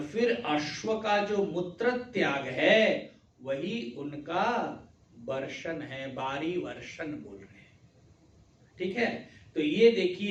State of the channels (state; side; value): identical; both; correlation 1.00